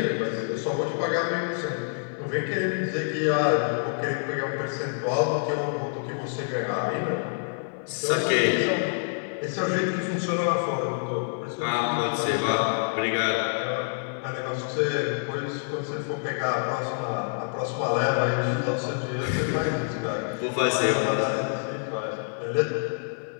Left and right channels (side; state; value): right; silent; 60 dB below the other